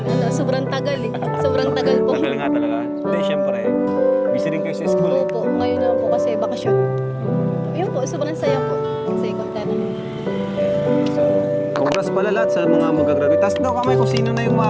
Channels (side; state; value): both; identical; correlation 1.00